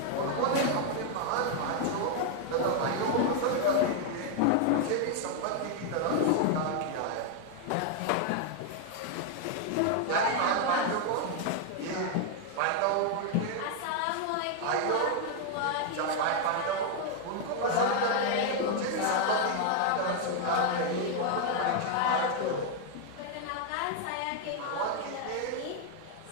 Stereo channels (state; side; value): different; both; correlation 0.00